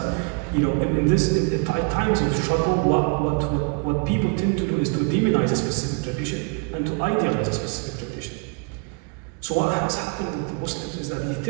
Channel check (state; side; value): quieter; left; 34.3 dB